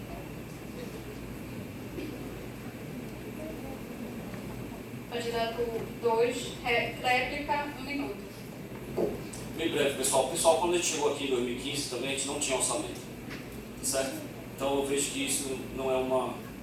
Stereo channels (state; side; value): identical; both; correlation 1.00